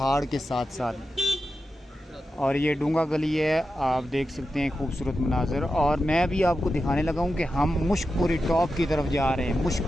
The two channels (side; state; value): both; normal; correlation 0.90